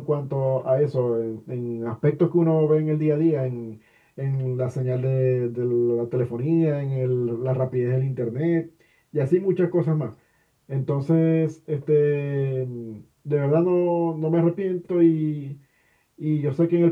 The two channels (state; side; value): identical; both; correlation 1.00